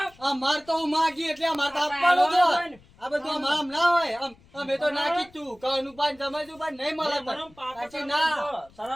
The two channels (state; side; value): noise; left; rumble, 27 dB below the sound